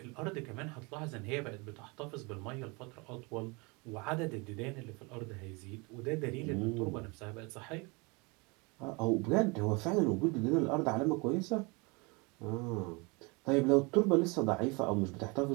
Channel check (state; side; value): quieter; left; 28.4 dB